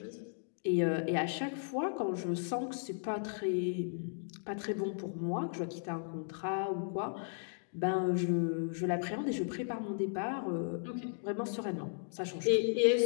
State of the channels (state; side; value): silent; right; digital silence